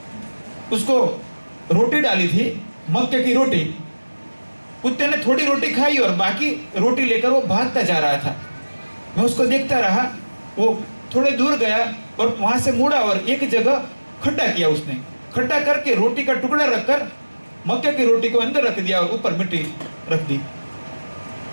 उसको रोटी डाली थी, मक्के की रोटी। कुत्ते ने थोड़ी रोटी खाई और बाकी रोटी लेकर वो भागता जा रहा था। मैं उसको देखता रहा। वो थोड़े दूर गया और वहां से मुड़ा और एक जगह खड्डा किया। उसने खड्डा करके रोटी का टुकड़ा रखकर मक्के की रोटी को अंदर रख दिया और ऊपर मिट्टी रख दी।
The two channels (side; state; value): both; inverted; correlation -1.00